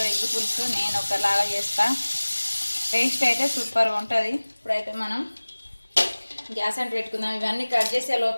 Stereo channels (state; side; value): inverted; both; correlation -1.00